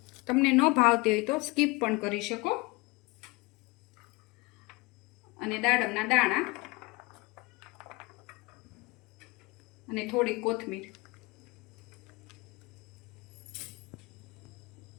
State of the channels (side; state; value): right; quieter; 24.5 dB